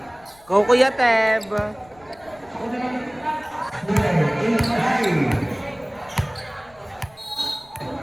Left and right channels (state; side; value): noise; left; rumble, 28 dB below the sound